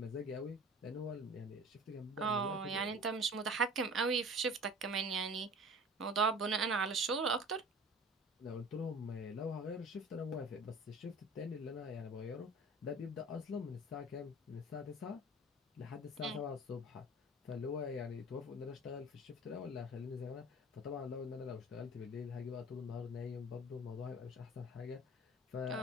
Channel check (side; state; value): both; normal; correlation 0.42